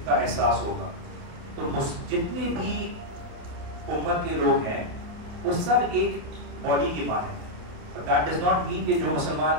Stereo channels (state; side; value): late; left; 28 ms